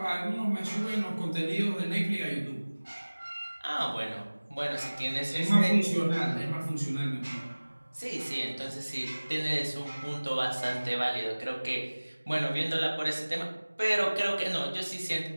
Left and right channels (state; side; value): inverted; both; correlation -1.00